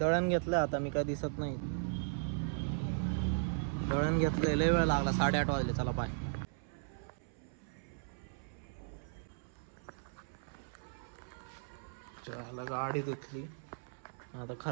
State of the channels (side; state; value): left; silent; 53 dB below the other